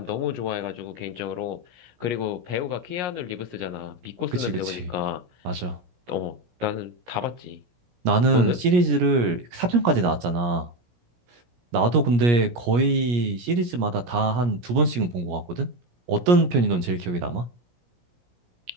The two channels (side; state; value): left; late; 17 ms